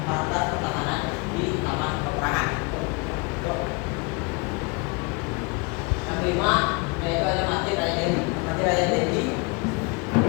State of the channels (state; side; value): quieter; right; 29.8 dB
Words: fakultas pertahanan di Taman Peperangan. Yang kelima yaitu ada Masjid Raya Deli. Masjid Raya Deli